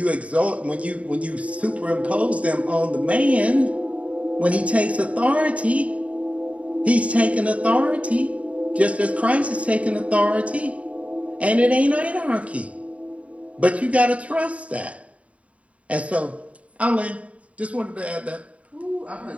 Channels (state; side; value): late; left; 0.066 ms